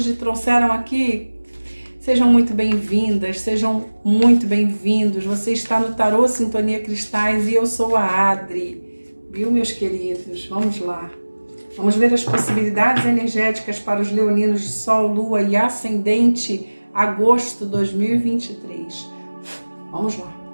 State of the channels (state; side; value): inverted; both; correlation -1.00